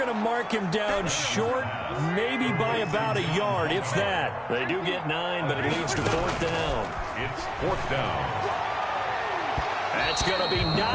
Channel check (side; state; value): both; identical; correlation 1.00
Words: to mark him down short, maybe by about a yard, if that. They do get 9, but it leads to 4th down. It's 4th down. That's going to be